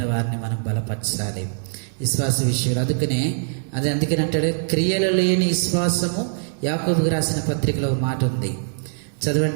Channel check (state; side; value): silent; left; digital silence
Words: వారిని మనం బలపరచాలి. విశ్వాస విషయంలో అందుకని అంటాడు, క్రియలు లేని విశ్వాసము. యాకోబుకు రాసిన పత్రికలో మాట ఉంది,